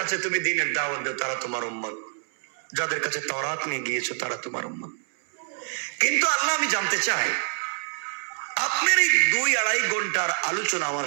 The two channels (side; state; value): left; silent; 61 dB below the other